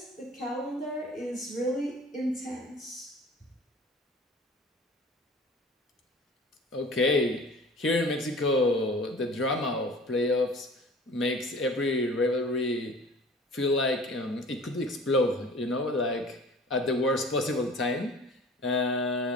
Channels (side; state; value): both; normal; correlation 0.44